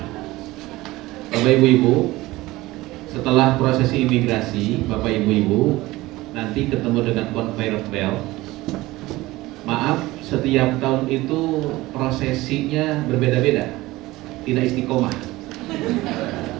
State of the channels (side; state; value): left; quieter; 18.9 dB